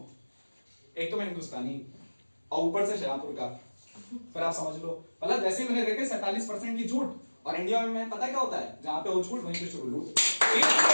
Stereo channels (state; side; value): inverted; both; correlation -1.00